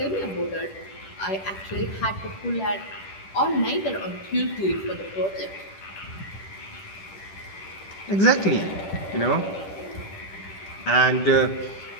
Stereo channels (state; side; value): late; right; 10 ms